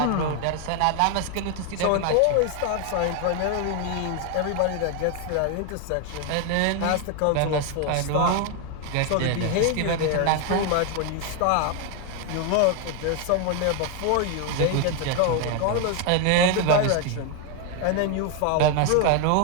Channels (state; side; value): different; both; correlation 0.01